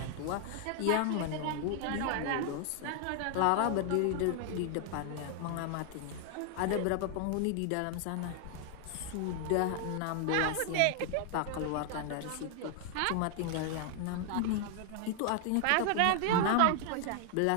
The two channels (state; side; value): different; both; correlation 0.00